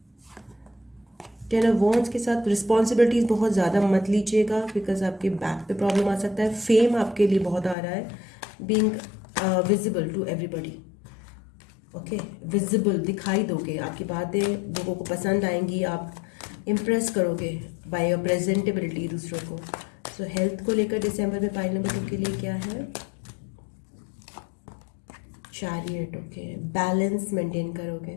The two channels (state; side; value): drops out; right; at 7.8 s